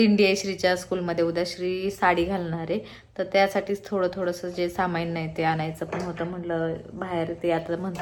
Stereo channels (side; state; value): both; identical; correlation 1.00